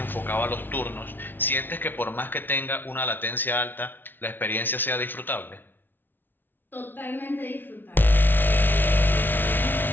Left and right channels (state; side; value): late; right; 0.096 ms